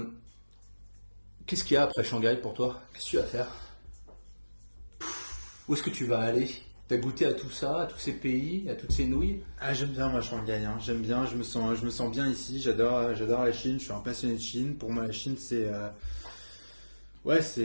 Qu'est-ce qu'il y a après Shanghai pour toi? Qu'est-ce que tu vas faire? Où est-ce que tu vas aller? Tu as goûté à tout ça, à tous ces pays, à toutes ces nouilles? J'aime bien moi Shanghai, hein. J'aime bien, je me sens bien ici, j'adore la Chine, je suis un passionné de Chine. Pour moi la Chine c'est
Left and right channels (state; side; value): inverted; both; correlation -1.00